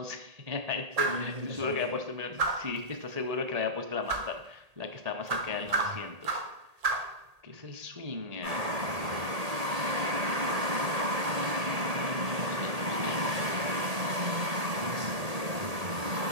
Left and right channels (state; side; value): late; left; 1.8 ms